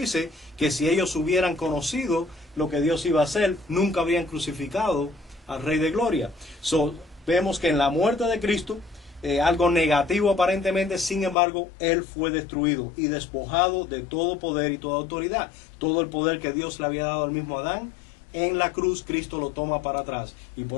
que si ellos hubieran conocido lo que Dios iba a hacer, nunca habrían crucificado al Rey de Gloria. Vemos que en la muerte de Cristo, algo negativo aparentemente, sin embargo, Él fue destruido y despojado de todo poder y toda autoridad. Todo el poder que Dios le había dado al mismo Adán, en la cruz Cristo lo toma para atrás. Y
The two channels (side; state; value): right; drops out; at 11.4 s